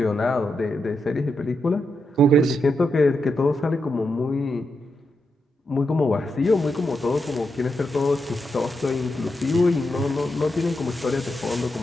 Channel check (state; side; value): normal; both; correlation 0.85